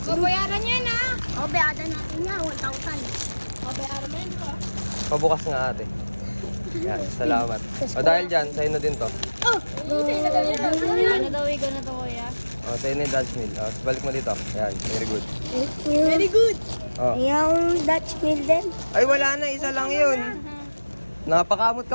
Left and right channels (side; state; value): both; inverted; correlation -1.00